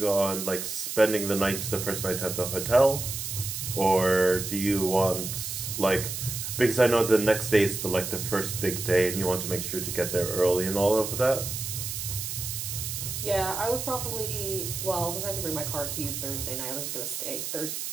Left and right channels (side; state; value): right; noise; hiss, 5 dB below the sound